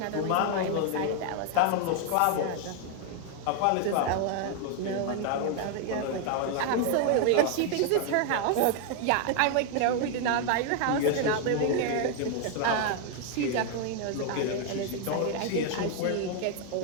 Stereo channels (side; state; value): both; different; correlation 0.00